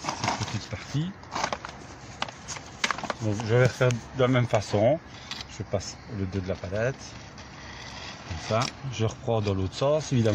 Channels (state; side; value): identical; both; correlation 1.00